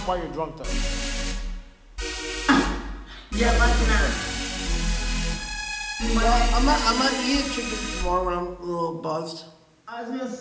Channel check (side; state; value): both; identical; correlation 1.00